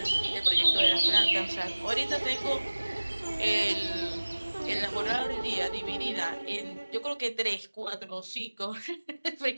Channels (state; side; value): inverted; both; correlation -1.00